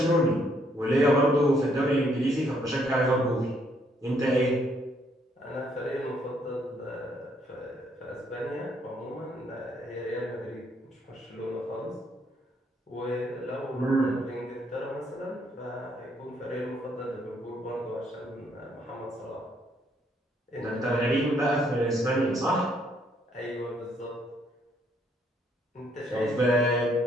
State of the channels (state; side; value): normal; both; correlation 0.70